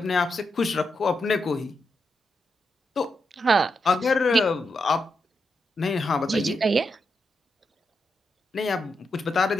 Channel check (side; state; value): both; normal; correlation 0.84